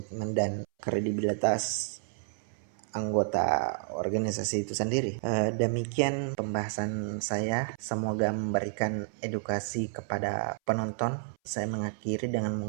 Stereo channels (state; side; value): silent; left; 57 dB below the other